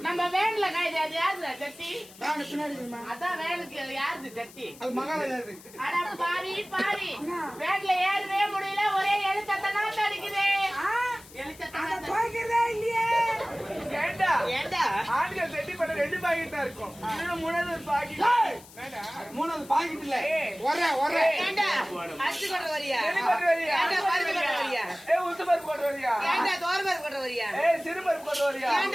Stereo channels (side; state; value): left; noise; hiss, 21 dB below the sound